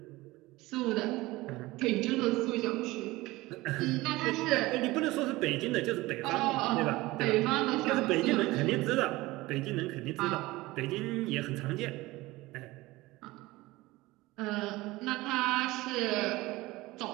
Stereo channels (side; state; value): left; quieter; 19.8 dB